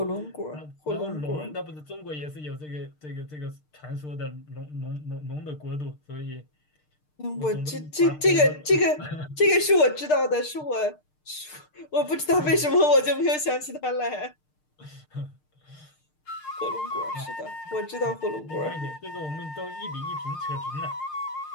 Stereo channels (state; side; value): late; right; 6.6 ms